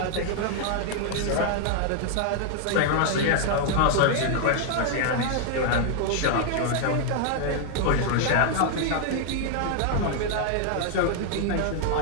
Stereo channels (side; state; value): both; different; correlation 0.00